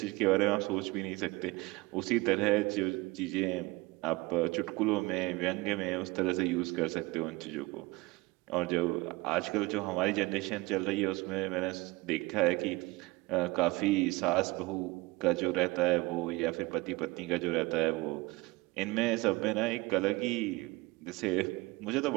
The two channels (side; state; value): left; quieter; 22.8 dB